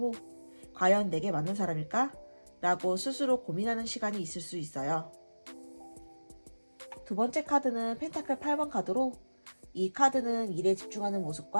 과연 내게 맞는 사람일까? 라고 스스로 고민하는 시간이 있을 수 있어요. 두 번째 카드는 펜타클 8번 카드로 이 카드는 일에 집중하는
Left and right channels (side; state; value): both; inverted; correlation -1.00